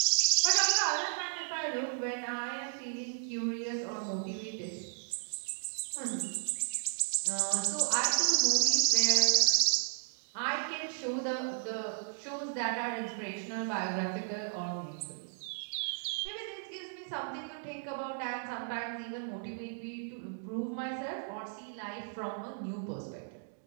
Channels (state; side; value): silent; left; digital silence